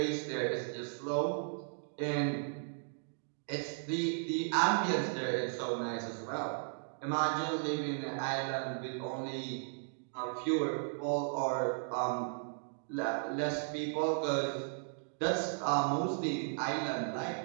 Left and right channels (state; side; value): silent; left; digital silence